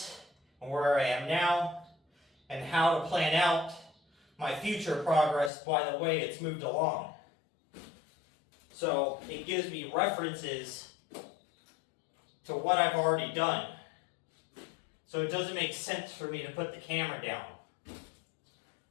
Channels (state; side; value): drops out; right; at 5.5 s